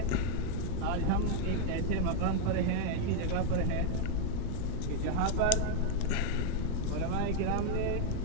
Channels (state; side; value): different; both; correlation 0.00